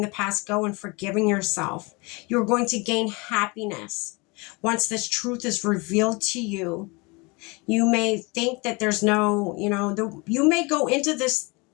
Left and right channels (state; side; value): quieter; right; 27.3 dB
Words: the past go and forgiving yourself. You're going to gain happiness. Once this truth is revealed to you, you may think that there's no, you may go into this